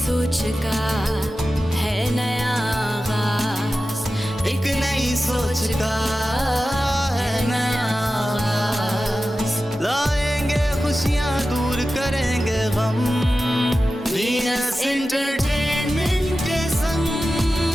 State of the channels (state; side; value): normal; both; correlation 0.94